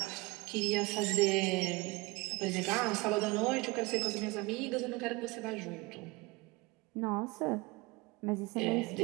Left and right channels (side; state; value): left; quieter; 23.9 dB